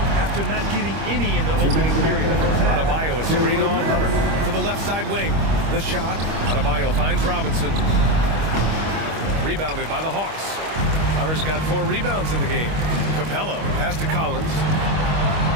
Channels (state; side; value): late; left; 25 ms